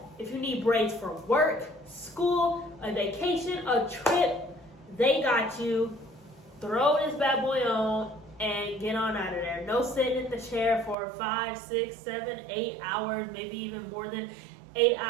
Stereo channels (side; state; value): left; drops out; at 11.0 s